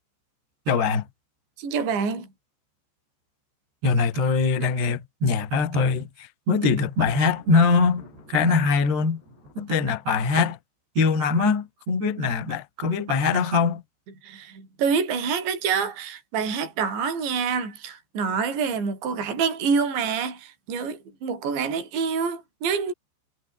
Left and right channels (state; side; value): late; left; 14 ms